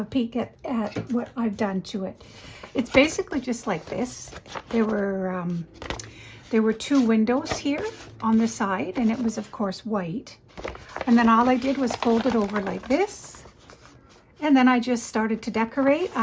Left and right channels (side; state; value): both; identical; correlation 1.00